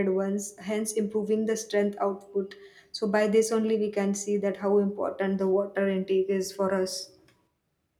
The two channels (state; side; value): identical; both; correlation 1.00